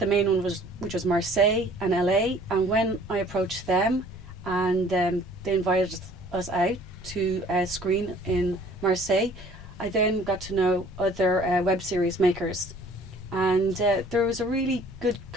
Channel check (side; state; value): both; normal; correlation 0.54